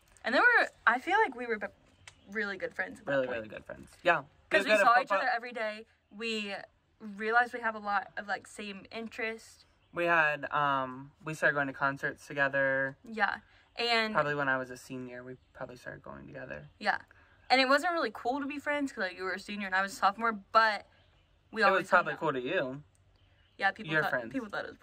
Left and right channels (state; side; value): identical; both; correlation 1.00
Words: And I feel like we were really good friends at that point. Really good friends. Yeah. Because we saw each other every day. We realized we have a lot of, like, same interests. We had, we started going to concerts together. Yeah. And Probably when I was a senior, we probably started going together. yeah. And it wasn't really cool to be friends because, like, you were a senior and I was a sophomore, but we always It was probably cool to you. Yeah, people Your thought, friends. people thought it was